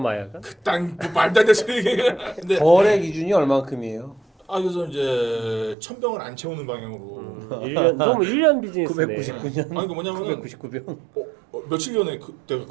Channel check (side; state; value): left; drops out; at 5.8 s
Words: 그딴 말도 안 되는 소리. 근데 거래 기준이 얼마큼이에요? 그래서 이제 1000병을 안 채우는 방향으로. 1년 너무 1년 비즈니스네. 999년. 아니 그 뭐냐면은 999병. 며칠 전에 내가